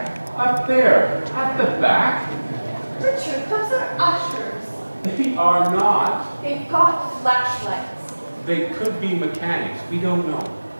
Up there, at the back. Richard, those are ushers. They are not. They've got flashlights. They could be mechanics. We don't know.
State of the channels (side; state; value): both; inverted; correlation -1.00